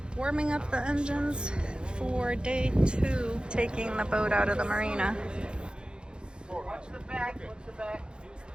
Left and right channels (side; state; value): left; late; 0.051 ms